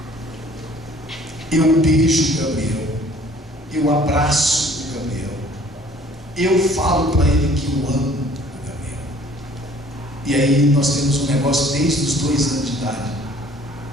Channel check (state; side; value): normal; both; correlation 0.55